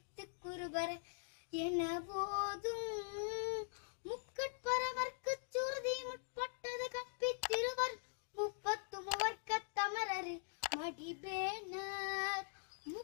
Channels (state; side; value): silent; right; digital silence